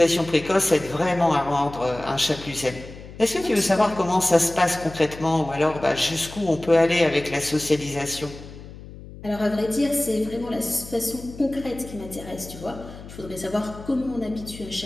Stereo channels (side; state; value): left; noise; hum, 15 dB below the sound